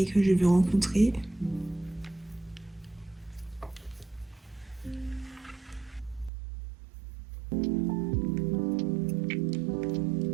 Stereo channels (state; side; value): drops out; left; at 6.3 s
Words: que je vais rencontrer.